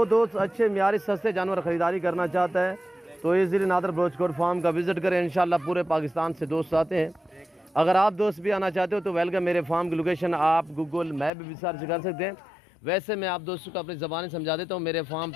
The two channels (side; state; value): right; drops out; at 11.3 s